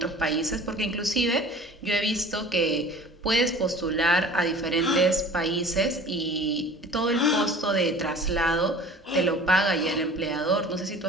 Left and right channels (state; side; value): normal; both; correlation 0.44